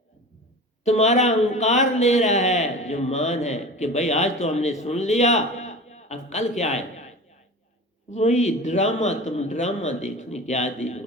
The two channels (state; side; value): normal; both; correlation 0.34